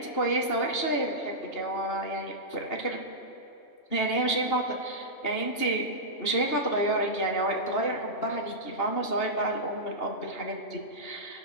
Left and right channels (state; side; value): late; right; 2.8 ms